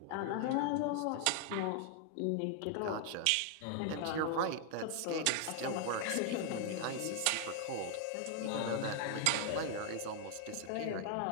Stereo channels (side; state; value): both; different; correlation 0.00